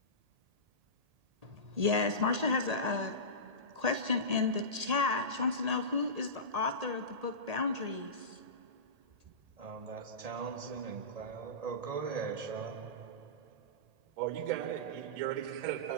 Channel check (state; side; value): late; left; 1.8 ms